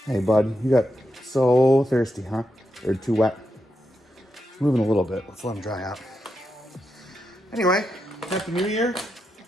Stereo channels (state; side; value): normal; both; correlation 0.85